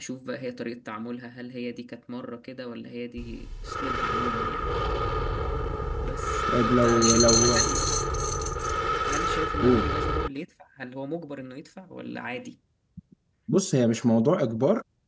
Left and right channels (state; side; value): identical; both; correlation 1.00